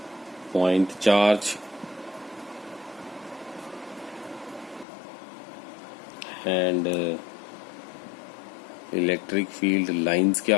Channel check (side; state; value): right; drops out; at 4.9 s